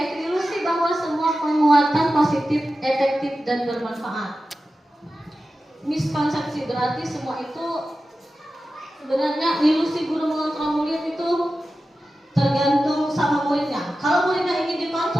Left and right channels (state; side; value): normal; both; correlation 0.93